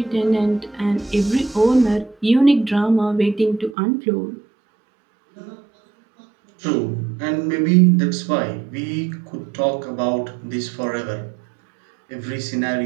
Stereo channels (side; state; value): left; drops out; at 3.8 s